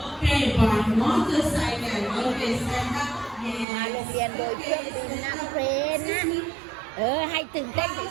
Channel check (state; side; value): drops out; left; at 3.7 s